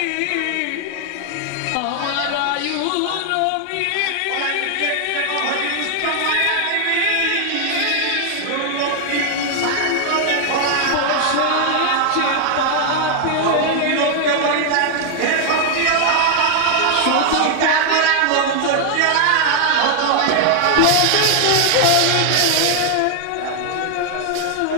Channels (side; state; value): both; different; correlation 0.00